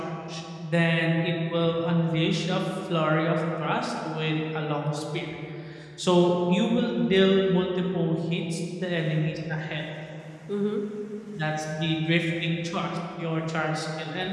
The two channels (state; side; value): identical; both; correlation 1.00